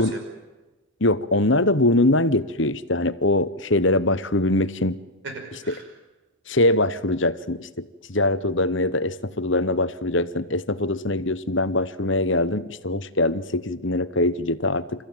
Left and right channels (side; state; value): both; normal; correlation -0.05